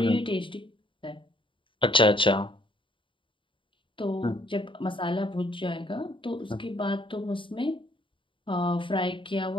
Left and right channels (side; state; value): right; late; 0.25 ms